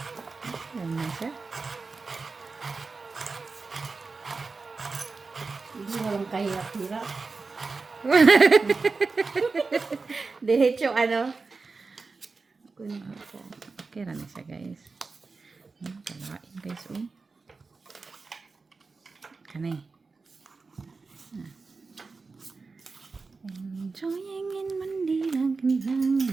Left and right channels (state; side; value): quieter; left; 4.2 dB